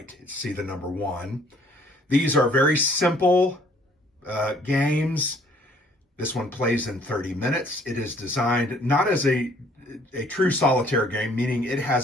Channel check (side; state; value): both; normal; correlation 0.60